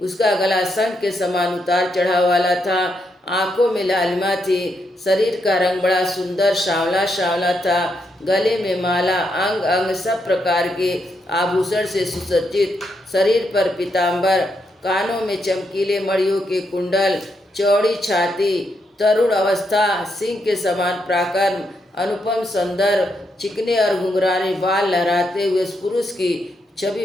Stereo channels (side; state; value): both; normal; correlation 0.80